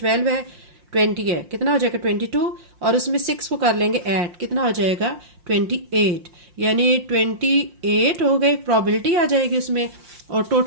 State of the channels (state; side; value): late; left; 5.6 ms